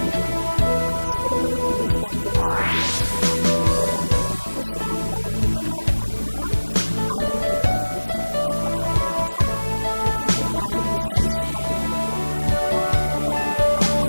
지금은 근무 시간이 좀 줄어들었지만 그때만 해도 12시간 영업이 끝나고 나면 아이들이 이제 학교 가고 나서 퇴근 후에 아이들이 잘 시간에 오고 그러다 보니까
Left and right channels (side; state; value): both; inverted; correlation -1.00